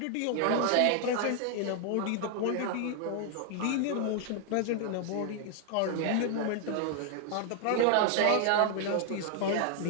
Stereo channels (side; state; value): both; different; correlation 0.00